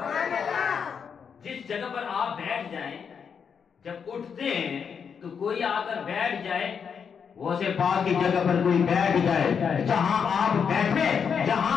جس جگہ پر آپ بیٹھ جائیں جب اٹھتے ہیں تو کوئی آ کر بیٹھ جائے، وہ سے پاک کی جگہ پر کوئی بیٹھ جائے، جہاں آپ بیٹھے،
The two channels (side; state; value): right; quieter; 6.7 dB